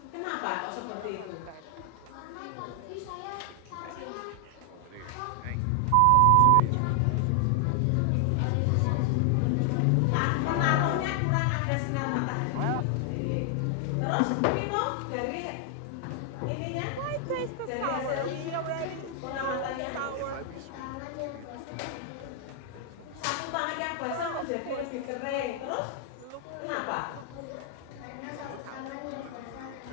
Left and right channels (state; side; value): different; both; correlation 0.00